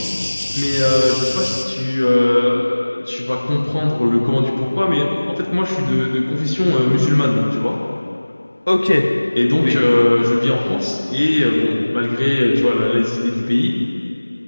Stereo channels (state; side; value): inverted; both; correlation -1.00